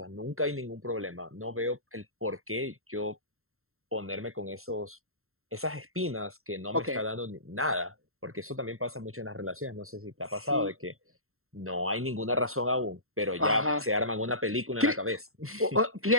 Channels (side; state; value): left; late; 0.62 ms